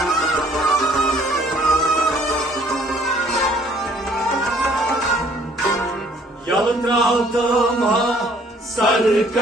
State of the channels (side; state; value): both; normal; correlation 0.60